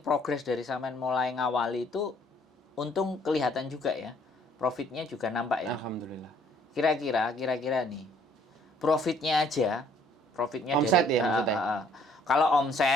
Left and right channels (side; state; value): both; normal; correlation 0.62